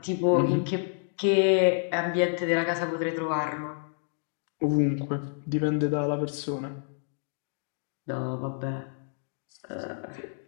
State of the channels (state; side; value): silent; right; digital silence